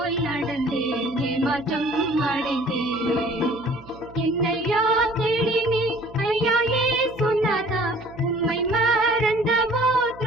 நடந்தேன், ஏமாற்றம் அடைந்தேன். என்னையா தேடினே ஐயா ஏசுநாதா, உம்மை மறந்தவோ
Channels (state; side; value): noise; right; hum, 20 dB below the sound